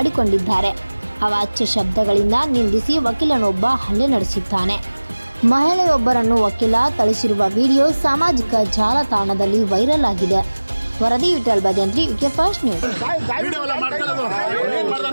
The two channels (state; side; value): inverted; both; correlation -1.00